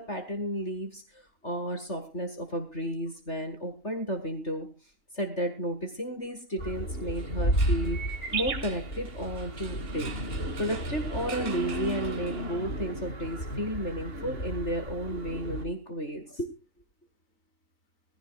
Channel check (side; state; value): right; late; 3.4 ms